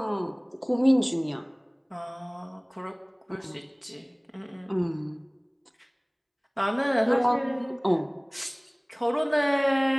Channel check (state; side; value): identical; both; correlation 1.00